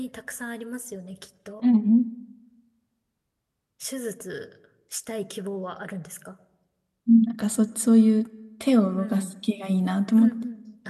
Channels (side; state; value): both; identical; correlation 1.00